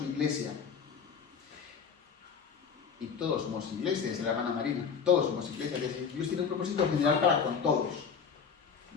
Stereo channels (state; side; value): quieter; right; 6.4 dB